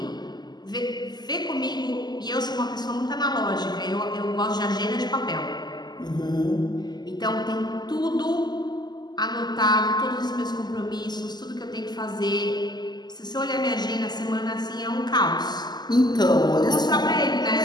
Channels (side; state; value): right; late; 0.21 ms